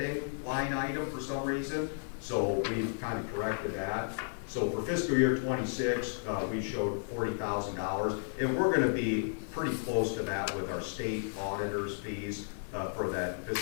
line item for some reason. So we kind of corrected that. So for fiscal year 26, we showed $40,000, and we're going to be pretty close to that with our state auditors' fees for that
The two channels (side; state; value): right; silent; digital silence